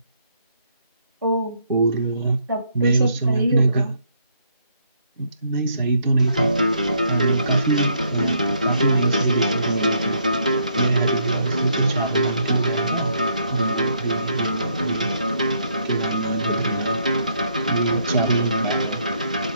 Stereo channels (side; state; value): both; inverted; correlation -0.70